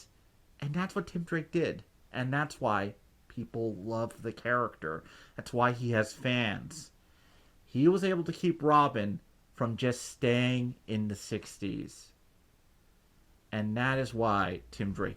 And that's what Tim Drake did. And that's why people love the character. That's why he has fans. He was able to keep Robin from just staying in the 60s. And that is why Tim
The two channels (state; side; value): identical; both; correlation 1.00